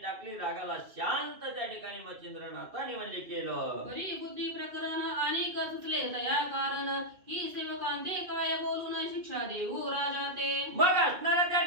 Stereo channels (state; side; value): late; left; 2.4 ms